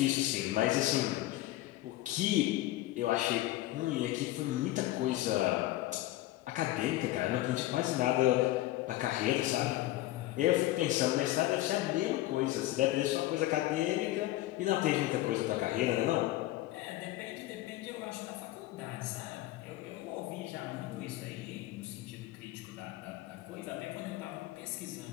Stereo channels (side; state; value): right; quieter; 16.2 dB